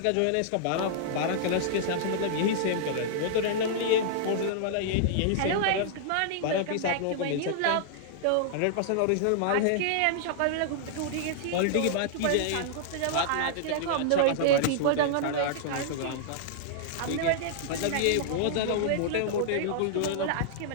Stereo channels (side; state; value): both; different; correlation -0.01